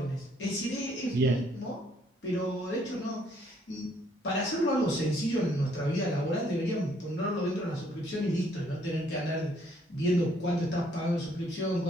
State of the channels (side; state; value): both; normal; correlation 0.66